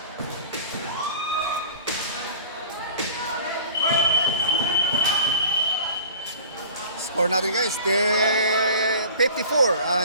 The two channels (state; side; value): inverted; both; correlation -0.43